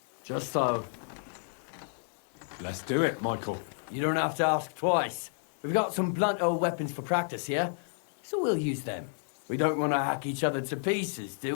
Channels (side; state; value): right; silent; digital silence